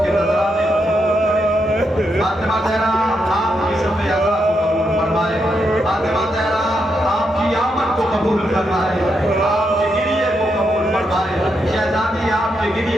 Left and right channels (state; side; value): normal; both; correlation 0.82